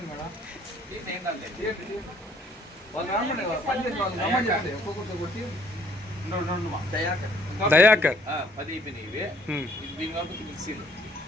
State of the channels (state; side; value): normal; both; correlation 0.62